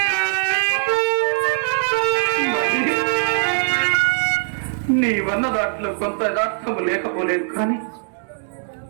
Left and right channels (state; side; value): silent; left; digital silence